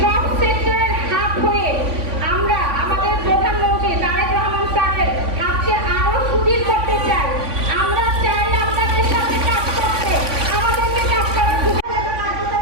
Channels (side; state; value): left; late; 3.5 ms